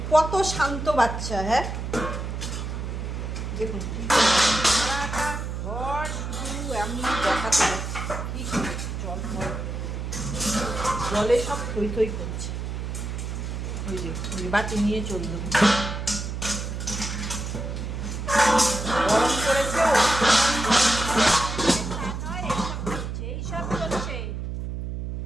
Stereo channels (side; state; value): right; noise; hum, 5 dB below the sound